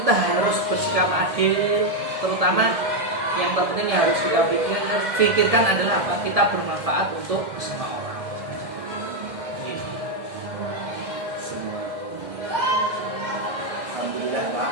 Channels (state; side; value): late; left; 1.6 ms